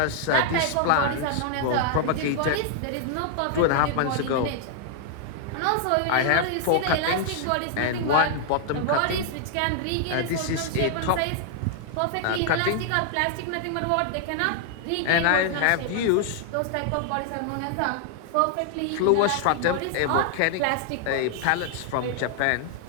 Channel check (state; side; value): different; both; correlation 0.00